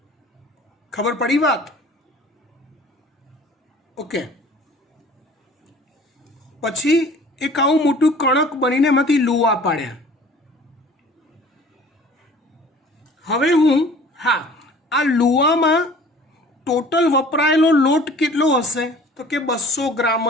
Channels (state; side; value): normal; both; correlation 0.48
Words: ખબર પડી વાત? ઓકે. પછી એક આવું મોટું કણક બનીને એમાંથી લુવા પાડ્યા. હવે આ લુવામાં ટોટલ વપરાયેલો લોટ કેટલો હશે? તો કે 200 ગ્રામ